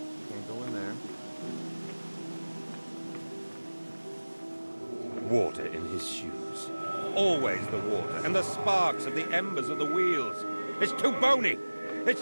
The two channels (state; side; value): inverted; both; correlation -1.00